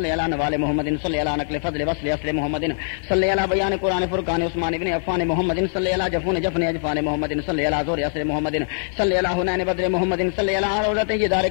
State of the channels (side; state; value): right; silent; digital silence